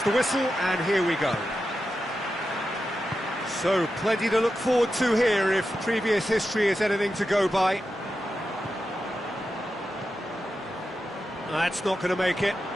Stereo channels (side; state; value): both; normal; correlation 0.90